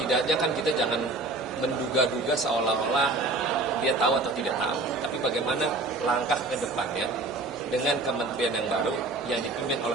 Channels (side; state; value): left; quieter; 3.1 dB